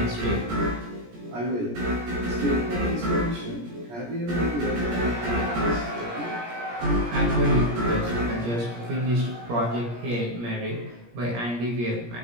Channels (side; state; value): left; late; 17 ms